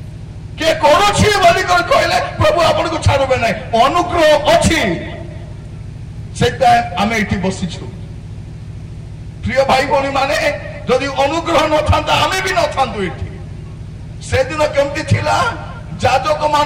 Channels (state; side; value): identical; both; correlation 1.00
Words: କିଏ କରୁଛି ବୋଲି କହିଲେ ପ୍ରଭୁ ଆପଣଙ୍କୁ ଛାଡ଼ିବେ ନାହିଁ। ଅନୁଗ୍ରହ ଅଛି, ସେଇଥିପାଇଁ ଆମେ ଏଠି ବସିଛୁ। ପ୍ରିୟ ଭାଇ ଭଉଣୀ ମାନେ, ଯଦି ଅନୁଗ୍ରହ ନଥାନ୍ତା ଆମେ ବି ନଥାନ୍ତୁ ଏଠି। ସେଦିନ କେମିତି ଥିଲା, ଯାଜକ